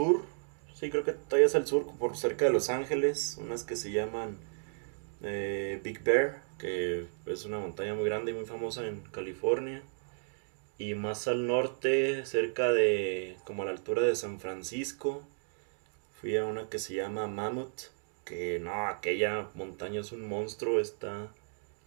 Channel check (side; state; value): left; silent; digital silence